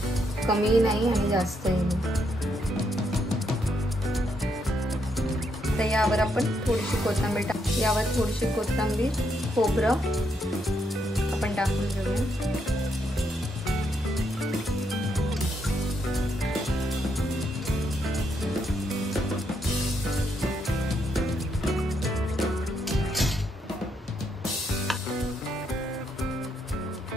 कमी नाही आणि जास्तही नाही। तर यावर आपण थोडीशी कोथिंबीर यावर थोडीशी कोथिंबीर, खोबरं आपण टाकून घेऊया।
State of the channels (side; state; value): both; normal; correlation 0.77